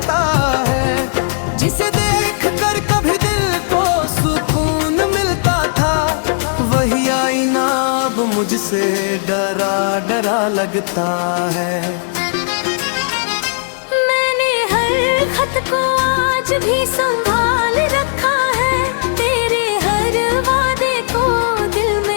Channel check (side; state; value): right; silent; 69 dB below the other